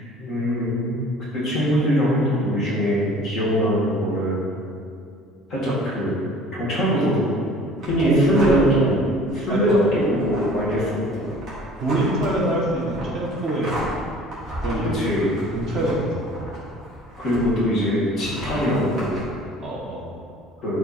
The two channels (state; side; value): normal; both; correlation 0.49